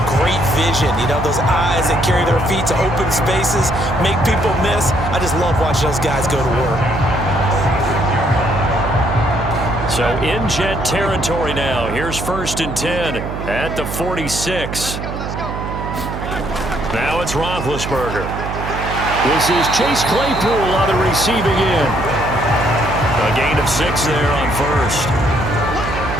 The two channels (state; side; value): noise; right; hum, 6 dB below the sound